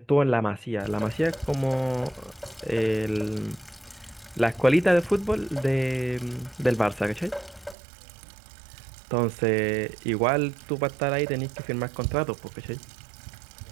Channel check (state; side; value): drops out; left; at 7.8 s